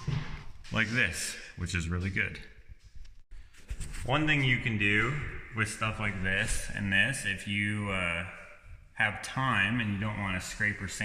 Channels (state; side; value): identical; both; correlation 1.00